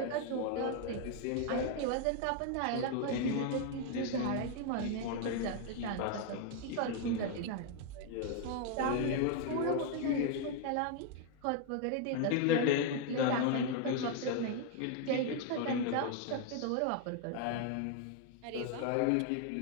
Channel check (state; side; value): different; both; correlation 0.00